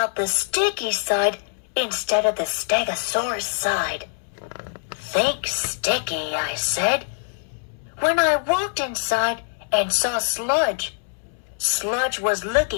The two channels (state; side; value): silent; right; digital silence